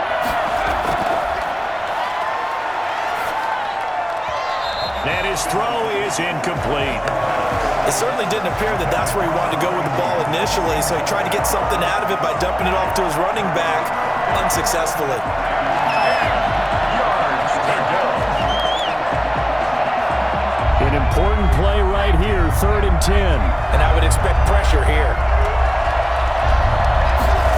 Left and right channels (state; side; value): identical; both; correlation 1.00